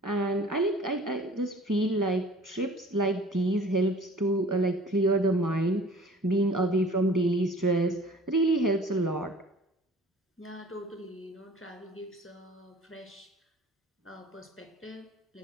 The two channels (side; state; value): both; normal; correlation 0.48